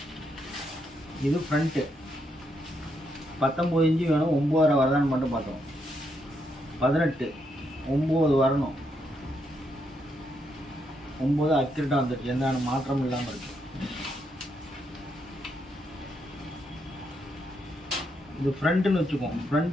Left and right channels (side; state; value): both; normal; correlation 0.78